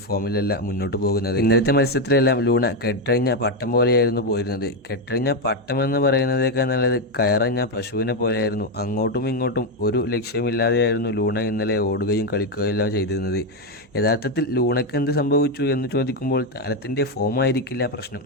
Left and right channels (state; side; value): noise; right; hum, 30 dB below the sound